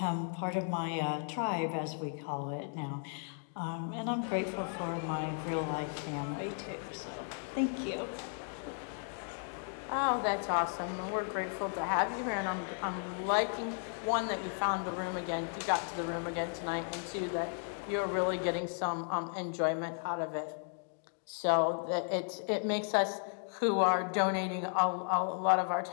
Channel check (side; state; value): right; silent; 54 dB below the other